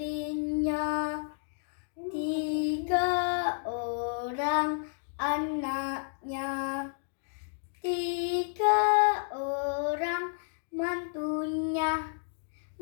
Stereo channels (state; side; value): silent; right; digital silence